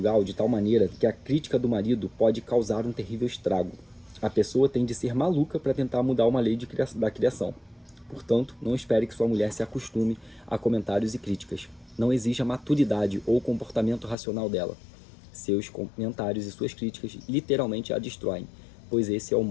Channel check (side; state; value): right; drops out; at 14.2 s